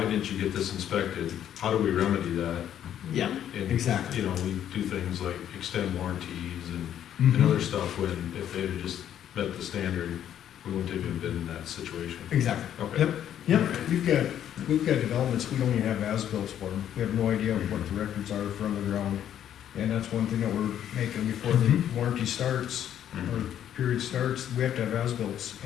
didn't you get this inspected? How do we remedy that? Yeah, And, exactly. we do things like extend warranties and Mhm. other stuff when, if they had just met the standard, we wouldn't have even been in that situation. Exactly. Okay. Yep, yep. We've got developments, we don't even have as-bills for them. We have no idea what the records are from the ground. And that's one thing that we're making before the warranty starts, or Mhm. period starts, we have to have as-bills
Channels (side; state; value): right; quieter; 10.4 dB